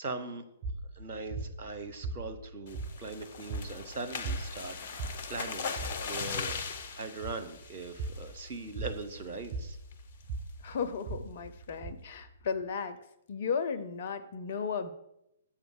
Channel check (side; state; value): both; inverted; correlation -0.40